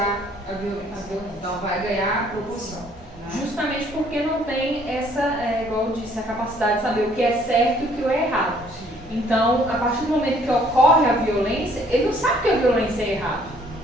a violência. Então, vai ganhar proporção. Né? Justamente porque não tem essa, igual eu disse, a capacidade de saber o que é certo e o que é errado. Então, a partir do momento que ocorre a violência, ele não sabe que a violência é errado.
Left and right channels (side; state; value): both; normal; correlation 0.61